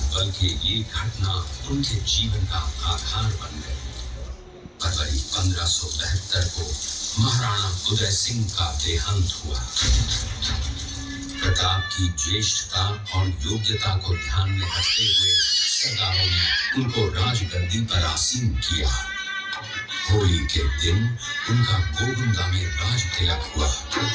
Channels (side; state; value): both; identical; correlation 1.00